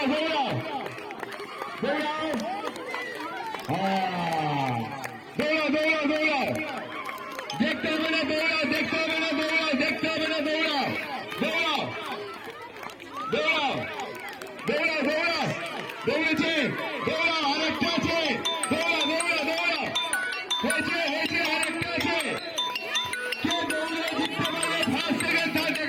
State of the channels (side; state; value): both; identical; correlation 1.00